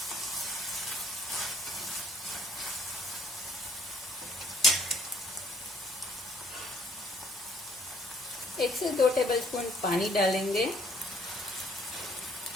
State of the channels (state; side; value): normal; both; correlation 0.62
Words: एक से 2 टेबलस्पून पानी डालेंगे।